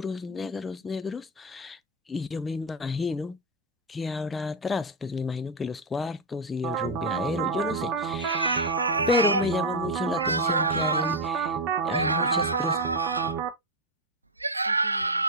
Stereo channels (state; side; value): normal; both; correlation 0.03